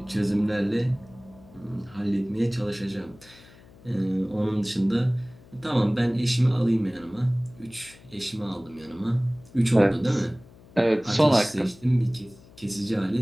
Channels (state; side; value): noise; left; hum, 24 dB below the sound